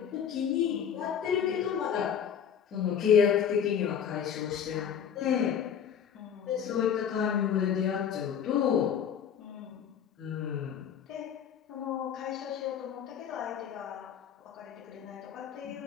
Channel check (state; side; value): quieter; right; 8.2 dB